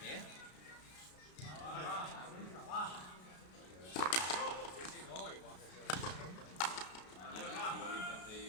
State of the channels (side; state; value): right; late; 33 ms